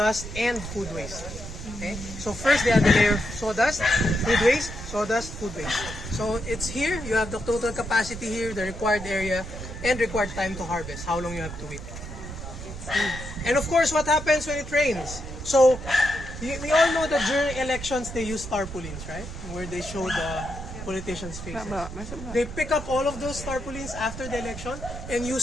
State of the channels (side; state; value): right; noise; rumble, 10 dB below the sound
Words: and food waste. Okay? So first they have the layer of sawdust, food waste, sawdust, food waste. So it's here, you have the total capacity here, the required area, and required time to harvest, how long you have to wait. And of course, what happens when it rains? So we all know that during elections they use tarpaulins, right? Where they show the politicians' faces. They pick up all of those tarpaulins after the election and